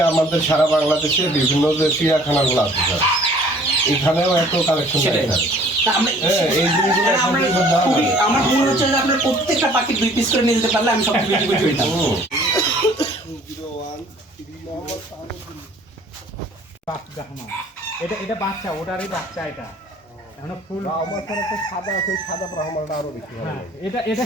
আমাদের সারা বাংলাদেশে বিভিন্ন যে চিড়িয়াখানাগুলো আছে স্যার, এখানেও এত কালেকশন আমার মনে হচ্ছে যে আপনার প্রত্যেকটা পাখি 2 পিস করে নিয়ে যেতে পারলে আমি সব বিক্রি করে দিতাম। এটা বাচ্চা, ওটারই বাচ্চা। এটা এখন ফুল আমার স্যার একটা সাদা আছে, সাদা ব্রাহ্মণটা আরো বেশি ভালো। এটা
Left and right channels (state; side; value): normal; both; correlation 0.54